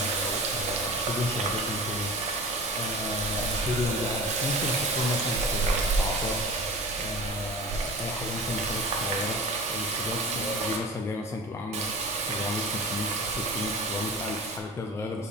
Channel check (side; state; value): both; normal; correlation 0.36